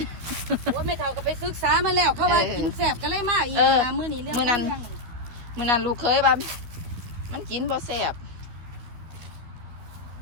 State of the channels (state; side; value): late; left; 12 ms